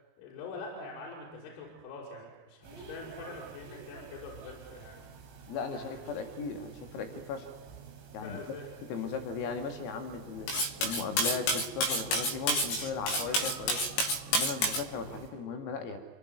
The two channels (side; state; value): right; late; 20 ms